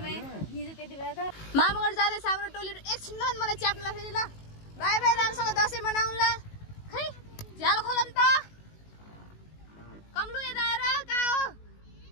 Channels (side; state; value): right; late; 19 ms